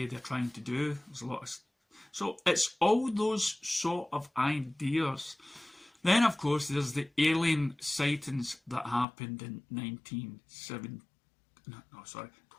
they're trying to do? There's a lot of... So it's all those sort of ideas. Then, of course, there's the alien sightings that happened in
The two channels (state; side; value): drops out; right; at 9.1 s